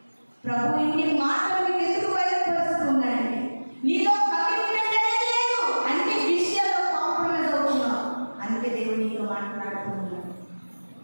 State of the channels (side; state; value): both; inverted; correlation -1.00